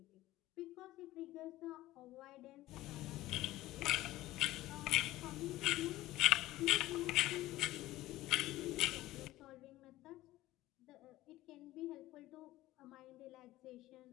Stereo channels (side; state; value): right; quieter; 16.5 dB